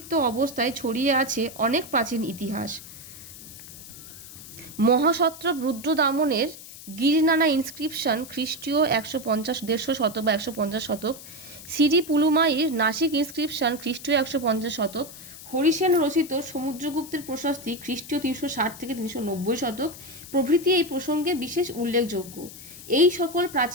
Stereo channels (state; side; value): noise; left; hiss, 15 dB below the sound